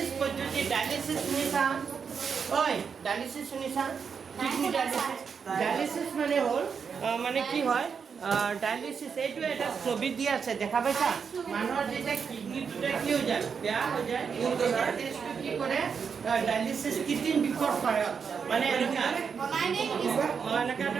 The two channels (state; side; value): quieter; left; 6.3 dB